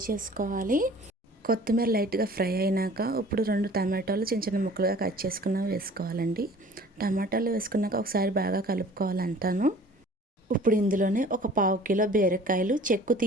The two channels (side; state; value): both; normal; correlation 0.48